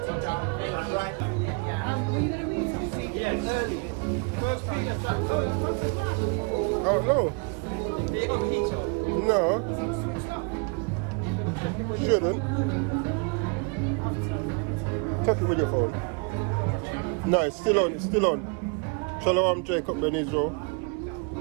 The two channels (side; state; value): left; quieter; 34.8 dB